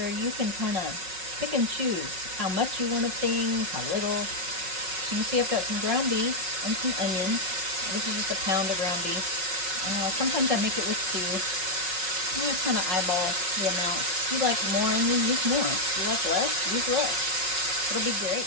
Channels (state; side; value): late; left; 5.4 ms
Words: you can kind of pick and choose how much you want of things, how little. You see I've got some ground beef and some onion. This is just a pound of ground beef. Sometimes I make it with stew. I just kind of eyeball the amount. If you like more onion, use more. If you like less, use less. It'll be great.